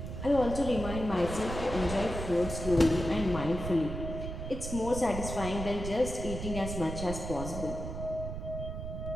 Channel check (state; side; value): noise; right; rumble, 6 dB below the sound